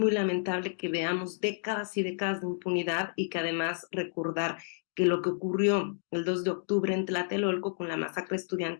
lamentable que veamos décadas y décadas de impunidad y que además recordar que lo que ocurrió el 2 de octubre en Tlatelolco con la masacre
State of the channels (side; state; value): right; silent; digital silence